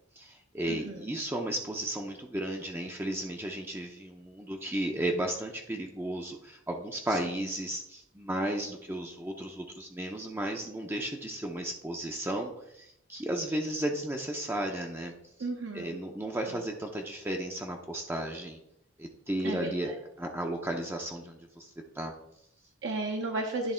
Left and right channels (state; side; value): normal; both; correlation 0.57